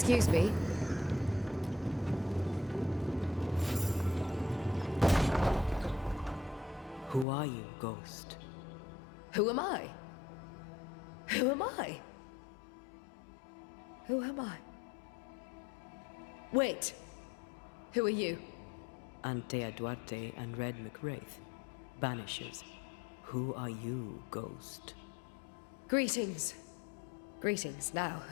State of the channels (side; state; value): right; drops out; at 7.2 s